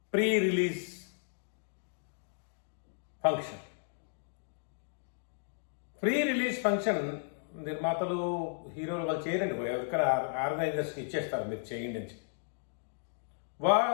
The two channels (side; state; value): right; silent; digital silence